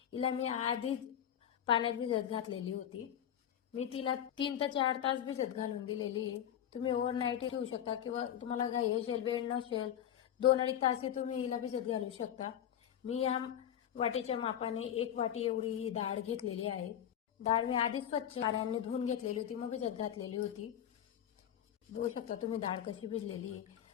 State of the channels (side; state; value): right; quieter; 10.1 dB